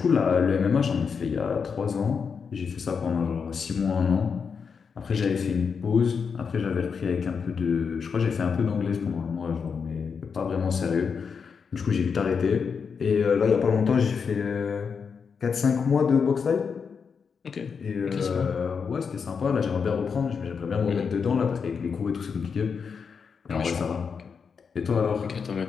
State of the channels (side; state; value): right; quieter; 6.0 dB